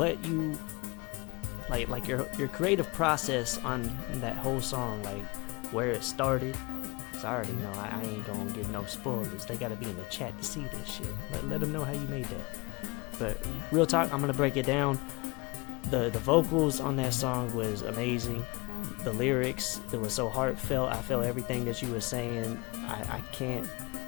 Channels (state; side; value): quieter; right; 26.9 dB